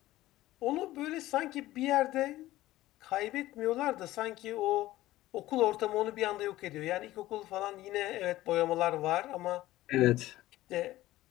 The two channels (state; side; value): quieter; right; 16.1 dB